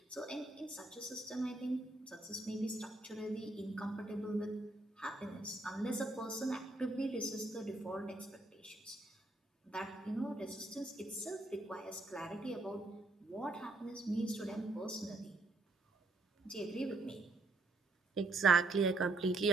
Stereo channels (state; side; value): quieter; left; 3.1 dB